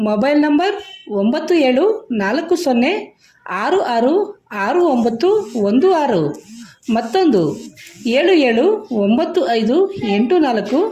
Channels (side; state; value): both; identical; correlation 1.00